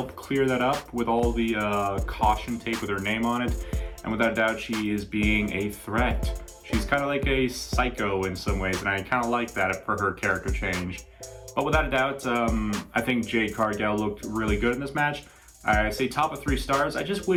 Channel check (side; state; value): both; identical; correlation 1.00